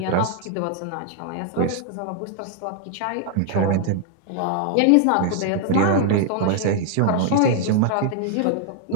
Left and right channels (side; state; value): both; different; correlation 0.00